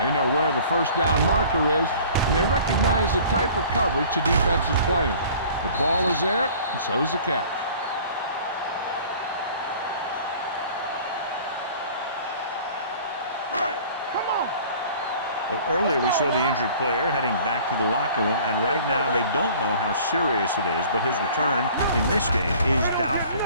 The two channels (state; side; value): inverted; both; correlation -0.48